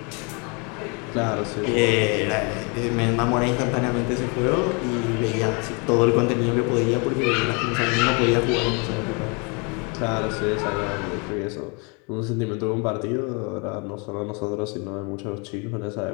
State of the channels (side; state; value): right; quieter; 32.6 dB